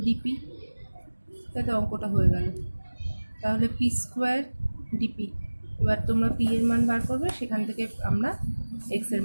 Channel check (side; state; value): both; inverted; correlation -1.00